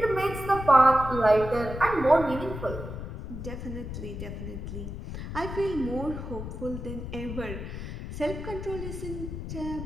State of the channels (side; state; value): left; noise; rumble, 7 dB below the sound